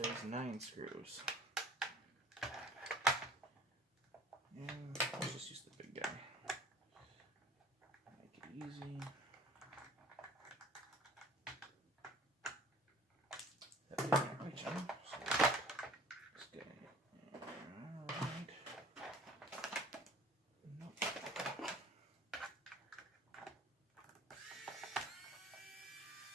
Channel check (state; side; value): normal; both; correlation 0.49